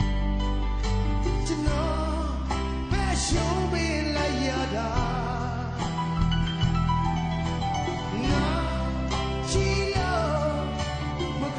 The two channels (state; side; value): identical; both; correlation 1.00